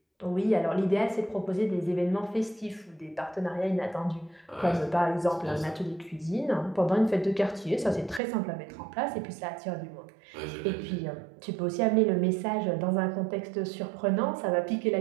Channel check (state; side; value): drops out; left; at 8.2 s